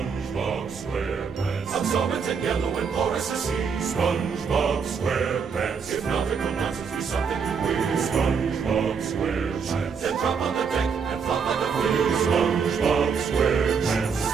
SquarePants. Absorbent and yellow and porous as sea. SpongeBob SquarePants. If nautical nonsense be something you wish, SpongeBob SquarePants. then drop on the deck and flop on the field. SpongeBob SquarePants.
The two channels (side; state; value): left; quieter; 6.0 dB